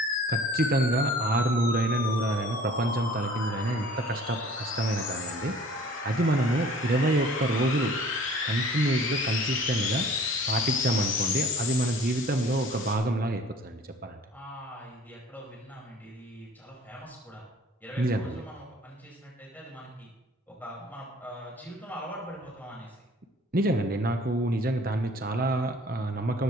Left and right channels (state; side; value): normal; both; correlation 0.50